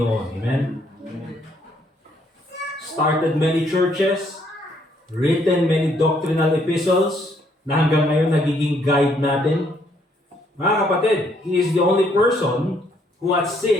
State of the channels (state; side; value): normal; both; correlation 0.69